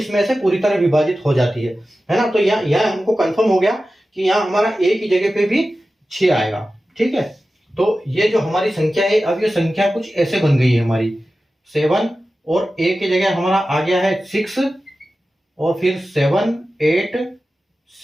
में से पूरी तरह विभाजित हो जाती है ना। तो यह हमको कंफर्म हो गया कि यहाँ हमारा A की जगह पे भी 6 आएगा। ठीक है, तो ये जो हमारी संख्या है, अब ये संख्या कुछ ऐसे बन गई है हमारी 7, और A की जगह हमारा आ गया है 6, और फिर 7 8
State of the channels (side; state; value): both; normal; correlation 0.94